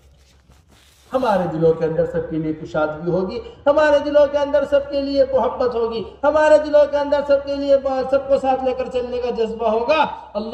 ہمارے دلوں کے اندر سب کے لیے کشادگی ہوگی، ہمارے دلوں کے اندر سب کے لیے محبت ہوگی، ہمارے دلوں کے اندر سب کے لیے سب کو ساتھ لے کر چلنے کا جذبہ ہوگا،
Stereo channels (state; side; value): identical; both; correlation 1.00